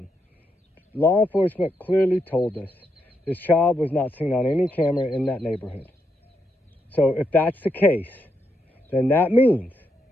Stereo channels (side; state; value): both; normal; correlation 0.81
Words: Law enforcement clearly told us this child was not seen on any camera in that neighborhood. So if that's the case, then that means